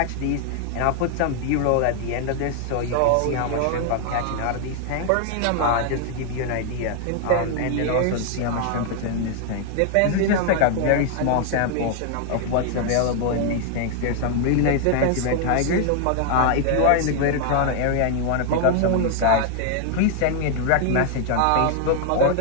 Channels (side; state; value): both; different; correlation 0.00